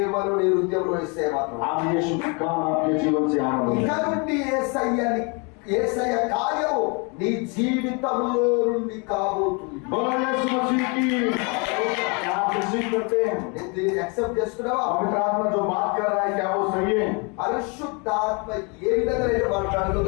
నీ హృదయంలో ఇస్తే మాత్రం आप यीशु का काम आपके जीवन से आरंभ ఇక करें। నుండి యేసయ్య కార్యము నీ జీవితంలో నుండి కాబోతుంది. बोलो यीशु मसीह की। क्या आप रिसीव करते हैं? నేను దీన్ని యాక్సెప్ట్ చేస్తున్నావా? पवित्र आत्मा जो बात कर रहा है क्या वो सही है? పరిశుద్ధాత్మ ఏ విధంగా నేను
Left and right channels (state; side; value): quieter; right; 32.6 dB